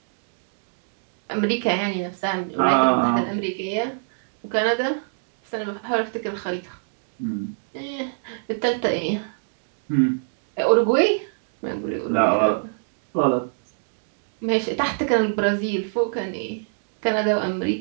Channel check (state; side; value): silent; left; digital silence